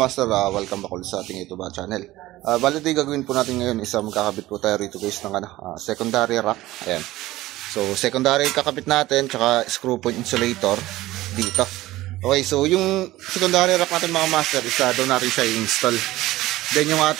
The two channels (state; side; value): quieter; left; 17.0 dB